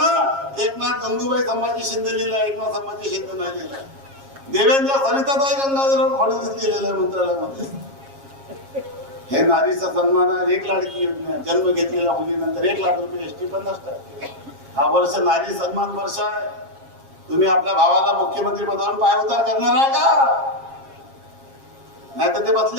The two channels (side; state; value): left; late; 7.4 ms